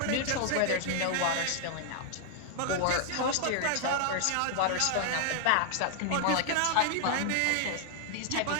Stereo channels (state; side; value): different; both; correlation 0.00